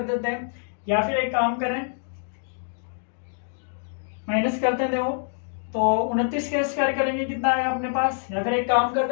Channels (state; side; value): silent; right; digital silence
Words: देते हैं, या फिर एक काम करें माइनस करते हैं। देखो तो 29 का स्क्वायर करेंगे कितना आएगा अपने पास, या फिर एक काम